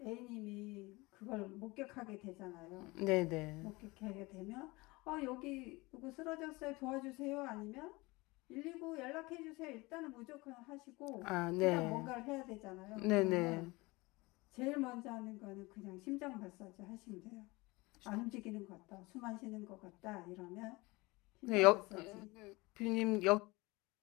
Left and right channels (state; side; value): quieter; right; 23.2 dB